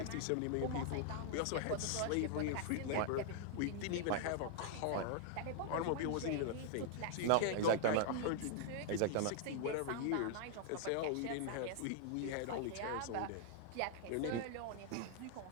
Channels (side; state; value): both; different; correlation 0.00